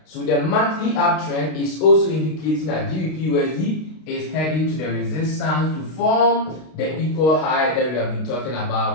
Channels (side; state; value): right; late; 32 ms